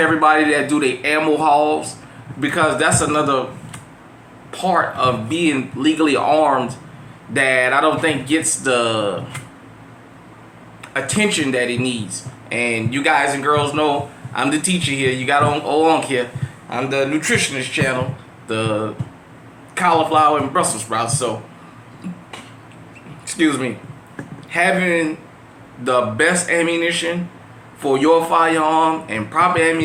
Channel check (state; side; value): identical; both; correlation 1.00